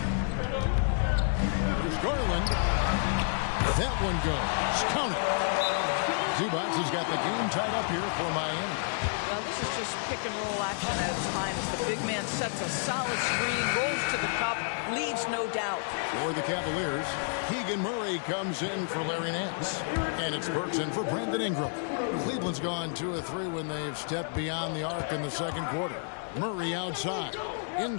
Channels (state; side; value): silent; right; digital silence